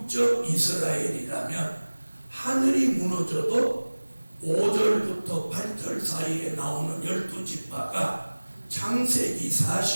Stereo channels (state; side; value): inverted; both; correlation -1.00